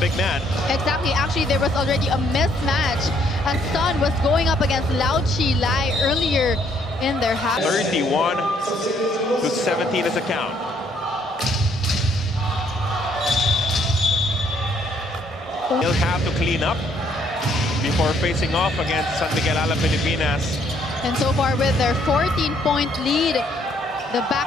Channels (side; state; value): both; normal; correlation 0.68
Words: man. Exactly. Actually, there was already a mismatch as Sun was going up against Lau Chalai earlier in their half. 31-17 is the count. They'll have to clean up before facing off against San Miguel Ale Pilipinas. And so far with their 14-point lead, the